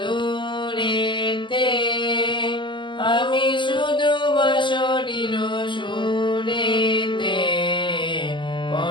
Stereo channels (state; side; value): late; right; 0.24 ms